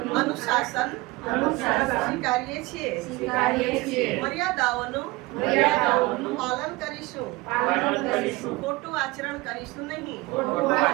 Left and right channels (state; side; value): quieter; left; 22.3 dB